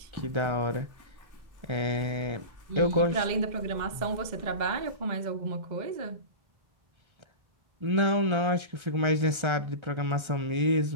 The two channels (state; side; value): late; left; 1.3 ms